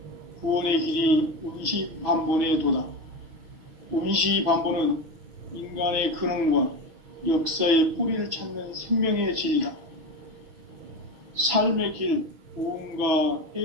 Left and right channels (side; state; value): left; late; 6.0 ms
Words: 구원의 길이 원시반본의 도다. 원시반본은 인간의 근원과 역사의 뿌리를 찾는 생명의 진리다. 삶의 길, 보험과